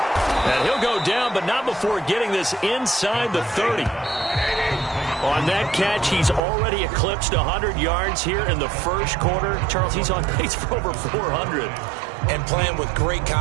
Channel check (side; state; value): left; drops out; at 6.4 s